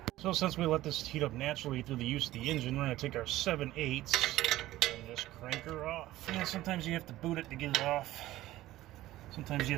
So since we let this heat up naturally through the use of the engine, we're going to take our 7/8 and just crank her off. And sometimes you have to boot it to get it off. Sometimes you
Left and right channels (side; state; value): left; quieter; 15.8 dB